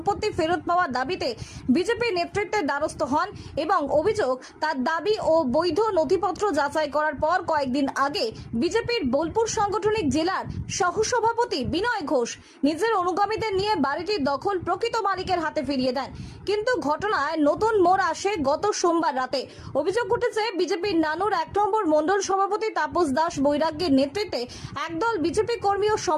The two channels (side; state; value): both; identical; correlation 1.00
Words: ফেরত পাওয়ার দাবিতে বিজেপি নেতৃত্বের দ্বারস্থ হন এবং অভিযোগ, তার দাবি ও বৈধ নথিপত্র যাচাই করার পর কয়েকদিন আগে বিজেপির বোলপুর সাংগঠনিক জেলার সহসভাপতি বিনয় ঘোষ নিজের অনুগামীদের নিয়ে বাড়িটির দখল প্রকৃত মালিকের হাতে ফিরিয়ে দেন। কিন্তু ঘটনায় নতুন মোড় আসে গত সোমবার রাতে। অভিযোগ উঠেছে, বিজেপির নানুর 1 নম্বর মণ্ডল সভাপতি তাপস দাস বৈরাগ্যের নেতৃত্বে একদল বিজেপি কর্মী ও